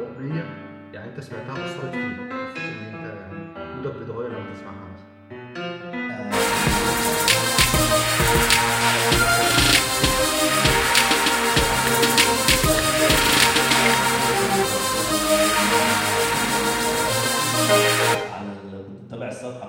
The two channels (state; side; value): identical; both; correlation 1.00